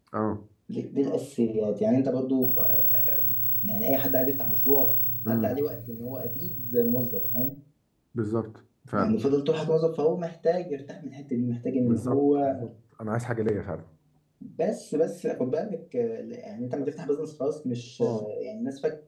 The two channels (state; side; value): identical; both; correlation 1.00